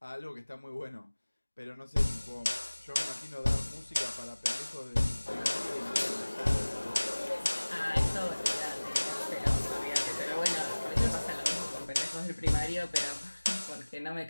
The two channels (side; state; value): both; inverted; correlation -1.00